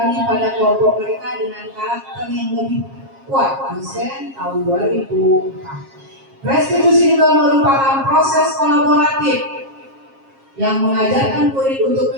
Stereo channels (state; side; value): late; left; 7.4 ms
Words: pada kelompok mereka dengan karakter yang lebih kuat. Dosen tahun 2004. Restitusi juga merupakan proses kolaboratif yang mengajarkan murid untuk